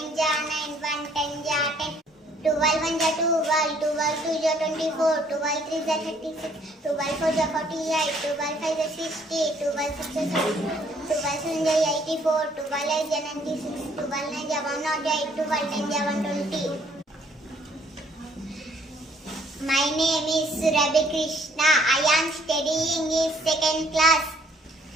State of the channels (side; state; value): both; normal; correlation 0.63